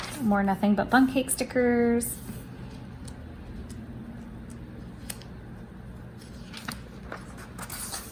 More nothing but bun cake stickers.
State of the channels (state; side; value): identical; both; correlation 1.00